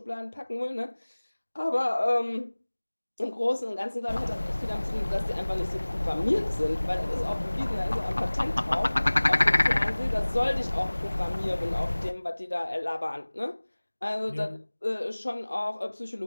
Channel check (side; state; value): both; inverted; correlation -1.00